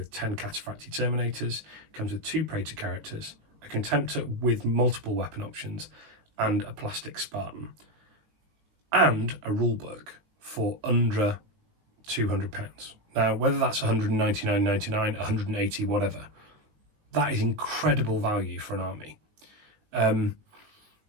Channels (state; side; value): late; left; 19 ms